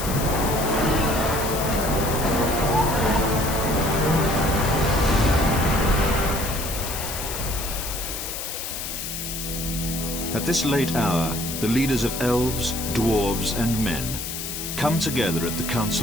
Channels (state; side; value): noise; left; hiss, 6 dB below the sound